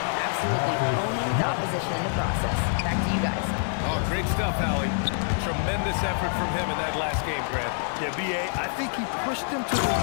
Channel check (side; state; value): right; silent; digital silence